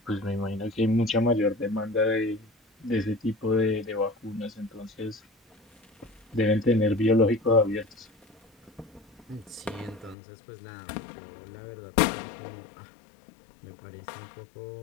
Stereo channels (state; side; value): drops out; right; at 10.2 s